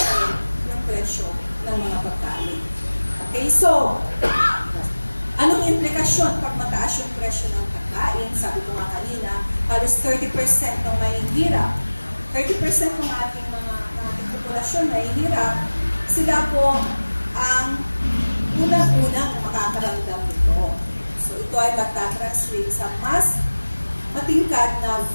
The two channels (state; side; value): inverted; both; correlation -1.00